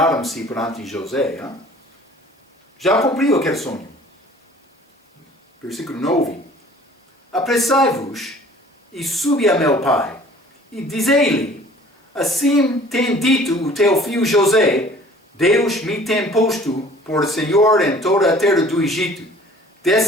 perante José. Já cumpriu aquele sonho. Versículo 9. Apressai-vos e subi a meu pai, e dizei-lhe, assim tem dito o teu filho José, Deus me tem posto por Senhor em toda a terra do Egito.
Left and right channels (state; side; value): normal; both; correlation 0.50